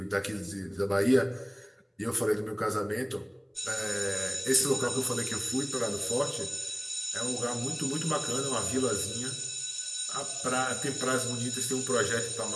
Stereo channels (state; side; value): identical; both; correlation 1.00